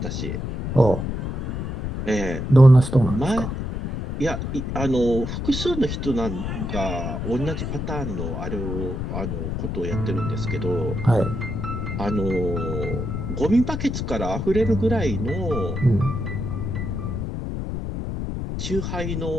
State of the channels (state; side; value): noise; left; rumble, 4 dB below the sound